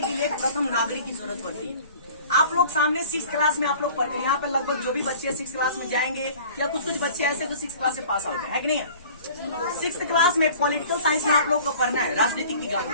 के लिए प्रथम नागरिक की जरूरत पड़ती है। आप लोग सामने 6th क्लास में आप लोग पढ़ते हैं, यहाँ पे लगभग जो भी बच्चे 6th क्लास में जाएंगे, या कुछ कुछ बच्चे ऐसे जो 6th क्लास से पास आउट है कि नहीं है? 6th क्लास में पॉलिटिकल साइंस में आप लोग को पढ़ना है, राजनीतिक विज्ञान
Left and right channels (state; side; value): inverted; both; correlation -0.46